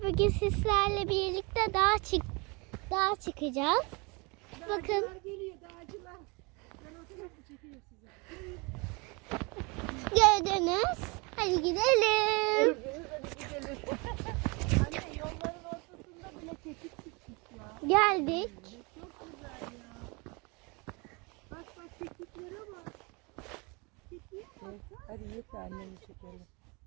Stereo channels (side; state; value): left; quieter; 28.9 dB